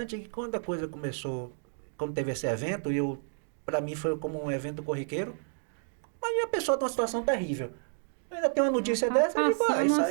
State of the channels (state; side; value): silent; left; digital silence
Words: que quando a coisa começou, quando teve esse evento, para mim foi como um evento corriqueiro, mas a pessoa tem uma situação terrível. Ainda tem uma notícia dessa, eu digo,